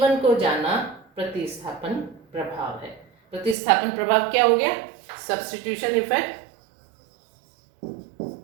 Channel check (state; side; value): drops out; left; at 3.6 s